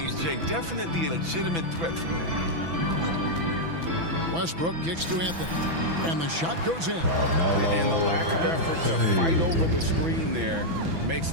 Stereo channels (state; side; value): late; left; 6.0 ms